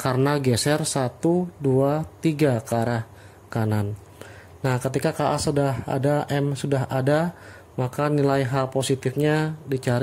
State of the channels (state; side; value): identical; both; correlation 1.00